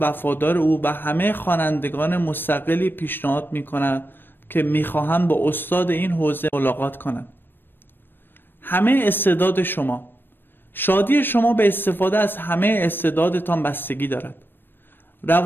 وفادار او و همه خوانندگان مستقلی پیشنهاد می‌کنم که می‌خواهند با استاد این حوزه ملاقات کنند. همه استعداد شما. شادی شما به استفاده از همه استعدادتان بستگی دارد.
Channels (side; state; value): right; late; 0.096 ms